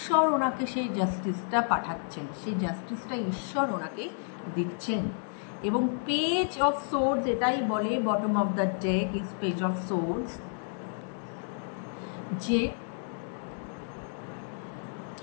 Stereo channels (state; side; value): silent; right; 57 dB below the other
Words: ওনাকে সেই জাস্টিসটা পাঠাচ্ছেন, সেই জাস্টিসটা ঈশ্বর ওনাকে দিচ্ছেন। এবং পেজ অফ সোর্ডস এটাই বলে, bottom of the day is page of swords, যে